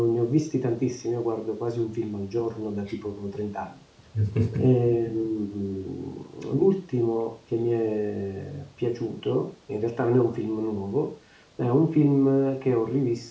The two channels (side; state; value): both; identical; correlation 1.00